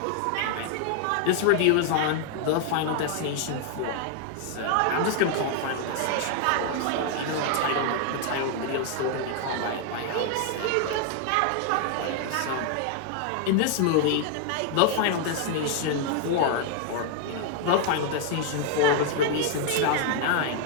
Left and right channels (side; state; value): both; different; correlation 0.00